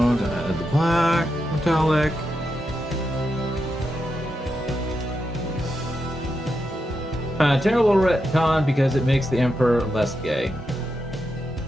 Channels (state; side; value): normal; both; correlation 0.86